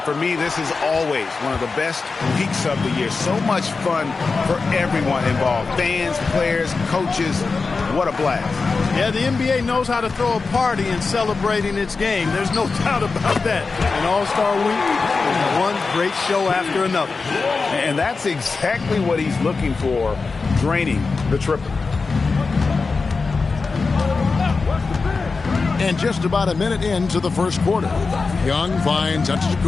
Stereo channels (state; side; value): quieter; right; 4.3 dB